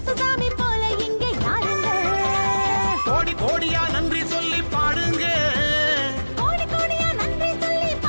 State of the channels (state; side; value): inverted; both; correlation -1.00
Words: சாமி போல இங்கே யாருங்க. கோடி கோடியா நன்றி சொல்லி பாடுங்க, கோடி கோடியா நன்றி சொல்லி